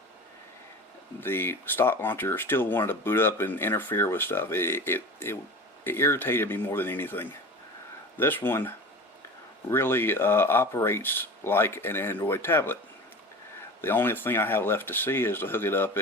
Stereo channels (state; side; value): normal; both; correlation 0.34